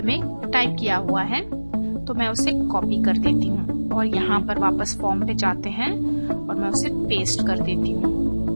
में टाइप किया हुआ है, तो मैं उसे कॉपी कर देती हूँ और यहाँ पर वापस फॉर्म पे जाते हैं और मैं उसे पेस्ट कर देती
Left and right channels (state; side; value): inverted; both; correlation -1.00